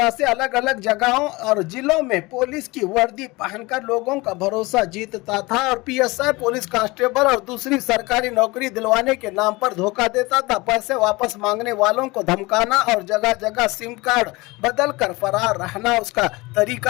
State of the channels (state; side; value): quieter; right; 22.9 dB